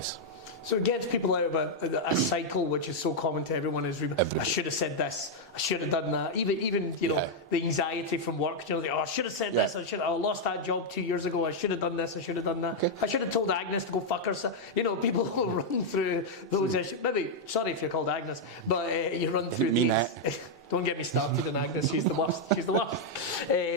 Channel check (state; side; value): normal; both; correlation -0.02